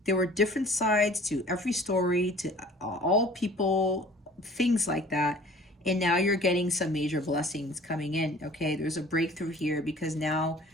there were different sides to every story, to all people, things like that. And now you're getting some major blessings coming in, okay? There's a breakthrough here, because now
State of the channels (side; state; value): both; normal; correlation 0.48